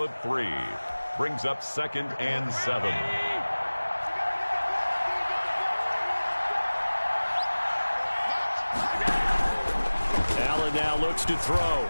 3. Brings up 2nd and 7. Allen now looks to throw.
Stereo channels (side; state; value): both; inverted; correlation -1.00